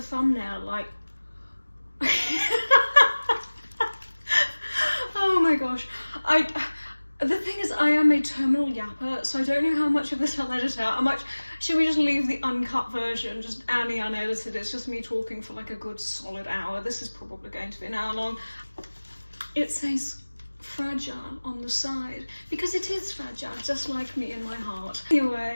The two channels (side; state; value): both; inverted; correlation -1.00